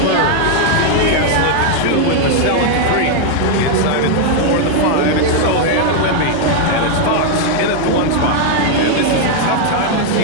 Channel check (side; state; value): both; different; correlation 0.00